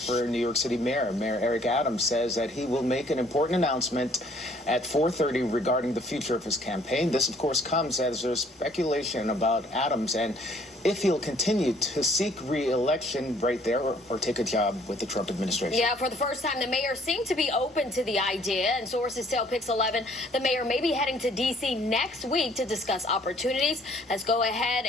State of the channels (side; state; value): both; normal; correlation 0.61